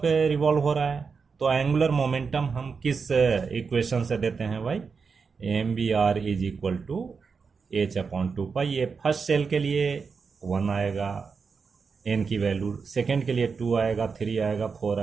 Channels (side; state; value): left; quieter; 5.3 dB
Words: पे रिवॉल्व हो रहा है, तो एंगुलर मोमेंटम हम किस इक्वेशन से देते हैं भाई, MVR is equal to H upon 2 pi. ये फर्स्ट सेल के लिए 1 आएगा, n की वैल्यू, सेकेंड के लिए 2 आएगा, 3 आएगा, 4